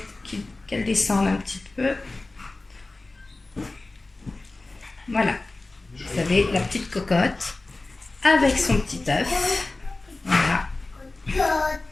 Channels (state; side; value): quieter; right; 3.2 dB